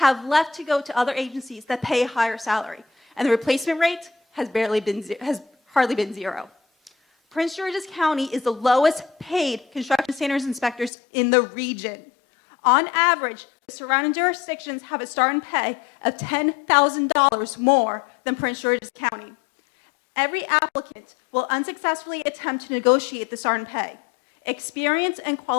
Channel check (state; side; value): drops out; right; at 10.9 s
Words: left to go to other agencies that pay a higher salary, and the replacement rate has hardly been zero. Prince George's County is the lowest paid construction standards inspectors in the region. On average, the surrounding jurisdictions have a starting pay of $10,000 more than Prince George's County. Every applicant will unsuccessfully attempt to negotiate the starting pay. Experienced and